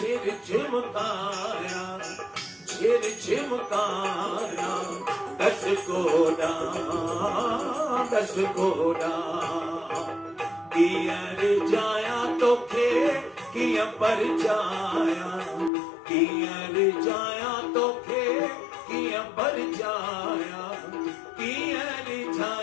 झुमकाया, छिर झुमकाया, दस कोड़ा कीअं रिझाया तोखे कीअं परचाया, कीअं रिझाया तोखे कीअं परचाया, कीअं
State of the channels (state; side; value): drops out; right; at 15.7 s